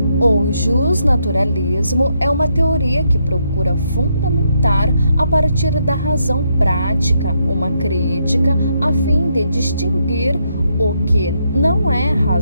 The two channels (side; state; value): both; inverted; correlation -0.78